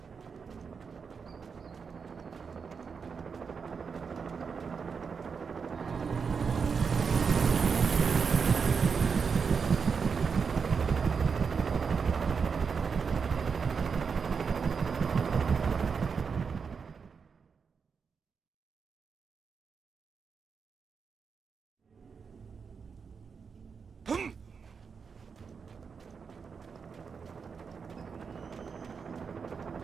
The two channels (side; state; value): left; quieter; 5.7 dB